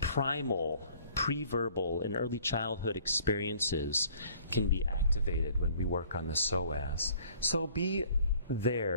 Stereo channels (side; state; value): both; inverted; correlation -0.56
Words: pre-verbal, and early childhood experiences can be activated when we work on the psoas. So be